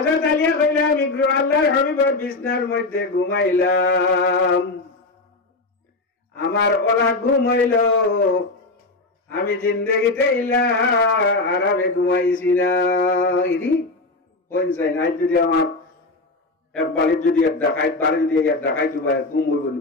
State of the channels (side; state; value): right; quieter; 3.2 dB